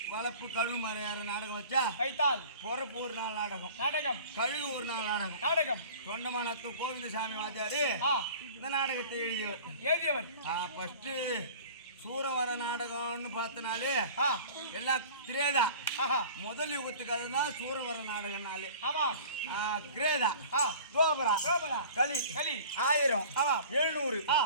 வளப்பு கழுவு மறையாற நாடகம் வச்சா வைத்தால் பொறப்பு ஒரு நாள் நாடகம் கழுகு ஒரு நாள் நாடகம் தொண்டமானத்து கோவிந்தசாமி வாத்தியாரு இந்த நாடகத்தை எழுதியவர். ஃபர்ஸ்ட் சூரவர நாடகம்னு பார்த்தனாலே எல்லாம் திரேதா. முதல் யுகத்துக்கு அதுதான் சூரவர நாடகம்னாலே. கிரேதா, தோபரா, களி 1000, 700,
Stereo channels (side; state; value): both; inverted; correlation -0.43